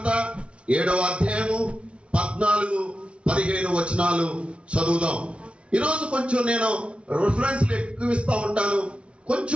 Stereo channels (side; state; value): left; late; 0.060 ms